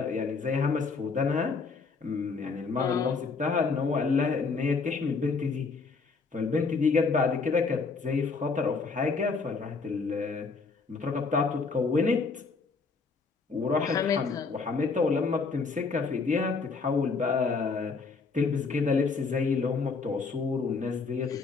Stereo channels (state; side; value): quieter; right; 4.6 dB